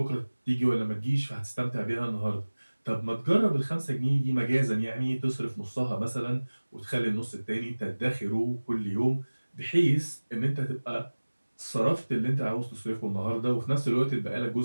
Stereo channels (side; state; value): both; inverted; correlation -1.00